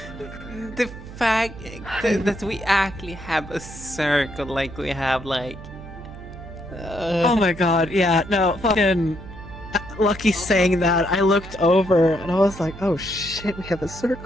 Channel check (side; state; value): right; noise; hum, 14 dB below the sound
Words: The fact that we actually have a circle, like we have like... Oh my god, yeah, no, fucking... Lucky saying that, I looked over and I was like, oh shit, we have a